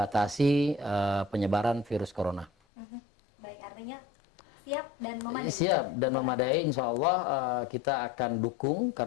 penyebaran virus corona. Baik, artinya siap dan memadai. Siap dan memadai, insya Allah kita akan dukung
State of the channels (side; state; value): right; drops out; at 2.5 s